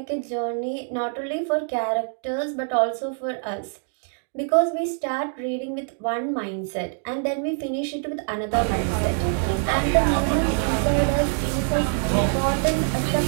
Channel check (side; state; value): left; silent; 57 dB below the other